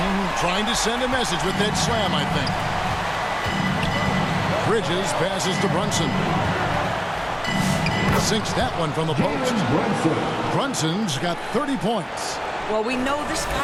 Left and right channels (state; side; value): identical; both; correlation 1.00